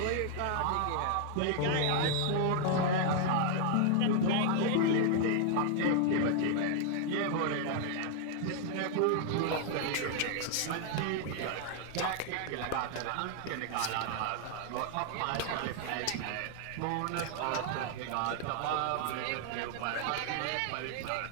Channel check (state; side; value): different; both; correlation 0.00